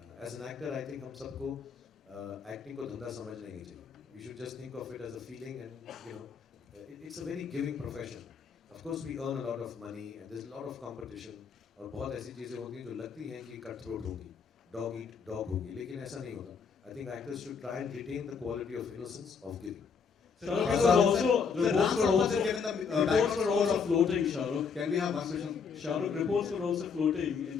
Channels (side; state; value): right; quieter; 5.9 dB